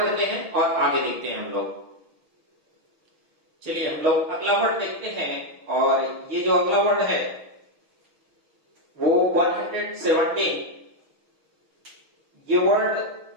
हैं और आगे देखते हैं हम लोग। चलिए हम लोग अगला वर्ड देखते हैं, और ये जो अगला वर्ड है वो 117, ये वर्ड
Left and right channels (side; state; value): left; late; 6.3 ms